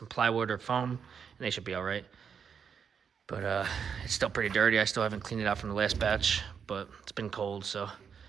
plywood or foam, and they should be all right. But it's still pretty dirty. I still haven't cleaned it out from the last batch, but it's been cold, so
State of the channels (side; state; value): left; quieter; 6.9 dB